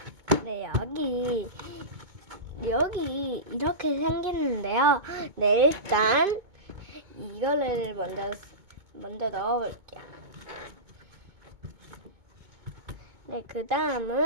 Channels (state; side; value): late; left; 2.2 ms